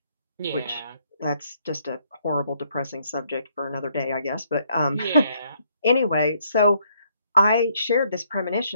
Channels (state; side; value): inverted; both; correlation -0.69